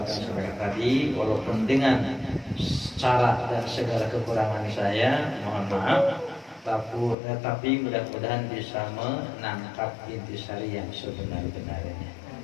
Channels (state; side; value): drops out; right; at 7.2 s